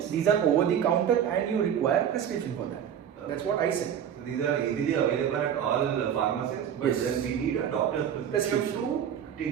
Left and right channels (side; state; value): left; quieter; 9.0 dB